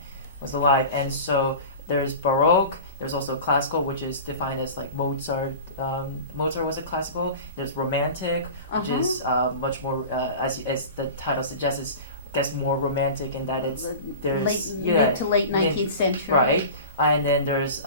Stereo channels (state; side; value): inverted; both; correlation -0.35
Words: alive. And so there's Baroque. There's also classical, which is defined as like Mozart. Mozart was a classical. There's Romantic, which is much more, as the title suggests, is gets more romantic in that there's mid to late 19th century. Right, and then there's